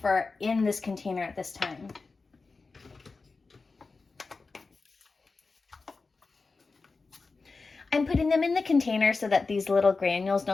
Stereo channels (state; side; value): quieter; right; 4.1 dB